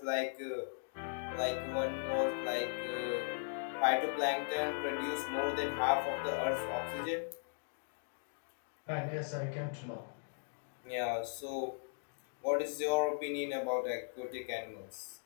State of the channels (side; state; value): right; silent; digital silence